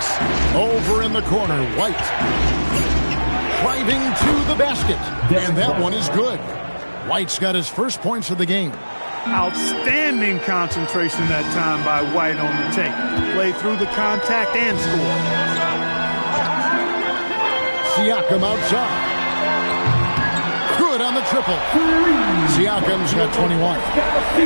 Over in the corner, White. Driving to the basket. And that one is good. White's got his first points of the game. Outstanding concentration that time by White on the tape. Played through the contact and scored. Siakam outside. Good on the triple. Siakam's got 21.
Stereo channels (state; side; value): inverted; both; correlation -1.00